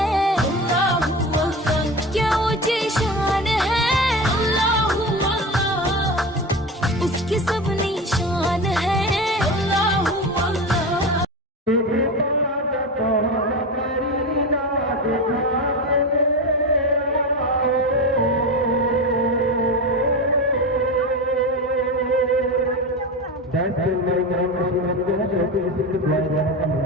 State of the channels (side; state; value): both; normal; correlation 0.23